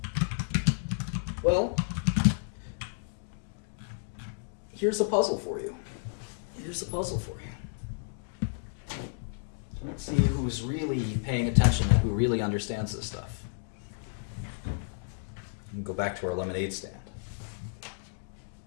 Well, here's a puzzle for you. Let's see who's really paying attention and who really understands this stuff. And go back to our lemonade stand.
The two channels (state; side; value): silent; right; digital silence